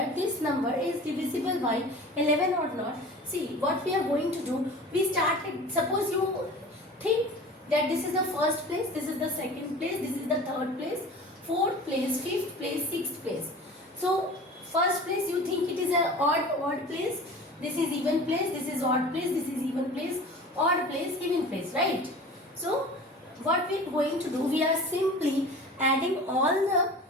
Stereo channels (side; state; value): both; normal; correlation 0.39